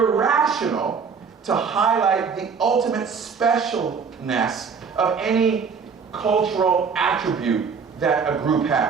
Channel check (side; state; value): left; quieter; 5.8 dB